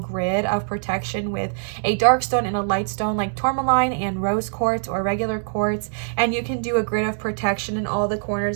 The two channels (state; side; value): silent; left; digital silence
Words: of protection with a dark stone and a light stone like tourmaline and rose quartz or regular quartz, and you can do a grid of protection in all the